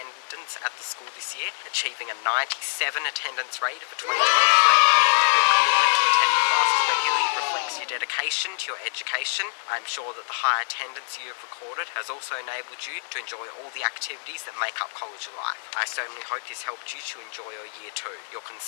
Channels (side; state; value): right; silent; digital silence